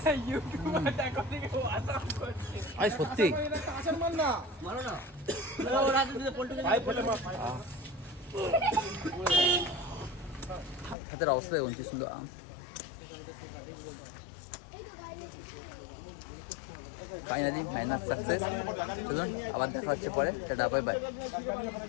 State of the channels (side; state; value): right; drops out; at 11.0 s